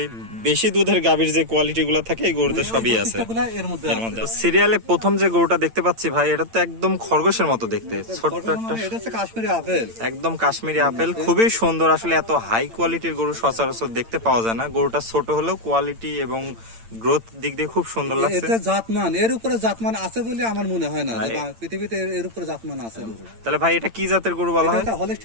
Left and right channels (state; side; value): late; left; 8.8 ms